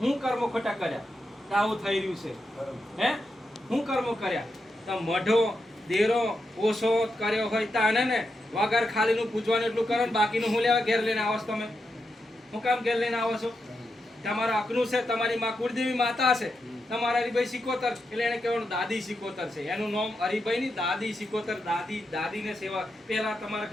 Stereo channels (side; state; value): both; normal; correlation 0.86